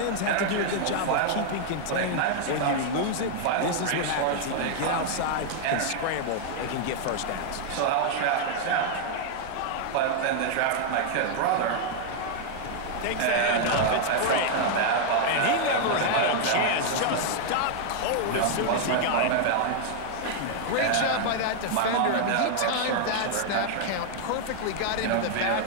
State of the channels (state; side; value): different; both; correlation 0.00